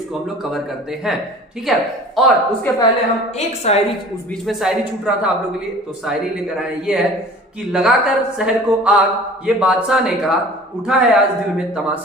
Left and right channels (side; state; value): both; normal; correlation 0.44